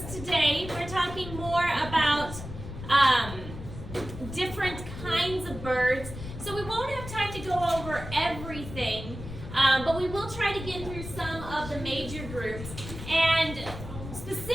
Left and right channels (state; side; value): noise; left; rumble, 10 dB below the sound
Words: today. We're talking more about different kinds of birds. So we won't have time to go over everything, but we will try to get through some of the major groups. And